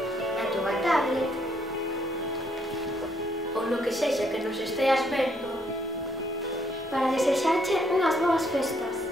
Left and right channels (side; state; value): both; normal; correlation 0.70